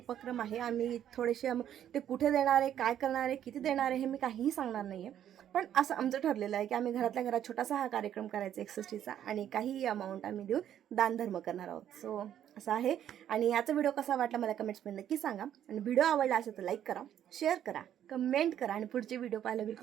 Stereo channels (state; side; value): quieter; left; 10.4 dB